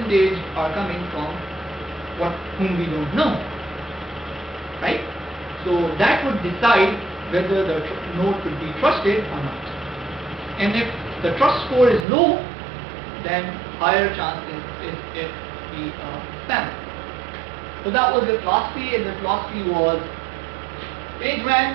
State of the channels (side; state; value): left; drops out; at 12.1 s